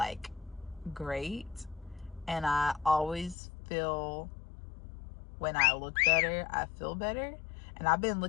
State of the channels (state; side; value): drops out; right; at 3.4 s